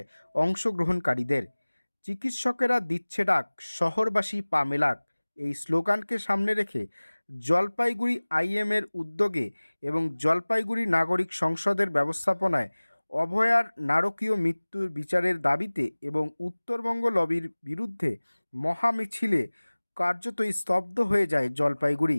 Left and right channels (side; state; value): both; inverted; correlation -1.00